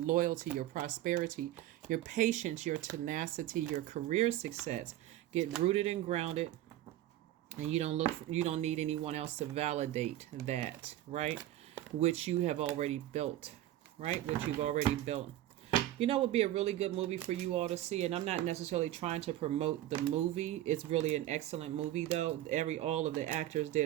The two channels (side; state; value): left; quieter; 13.9 dB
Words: your prosperity, your patience, your tenacity, your career success. Get rooted and grounded. And you don't need anyone else to validate that, right? Which you have already built, right? Which you've already built. You know, it would be a really good movie for you all to see. And I'm not necessarily trying to promote the movie. It's really an excellent movie, though. All of the actors